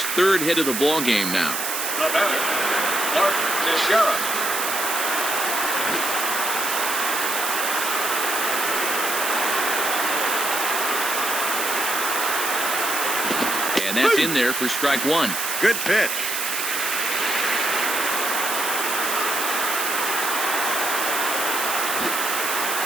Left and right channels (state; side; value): noise; right; hiss, 2 dB below the sound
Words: 3rd hit of the ball game now. The batter, Mark Teixeira. And that's in there for strike one. Good pitch.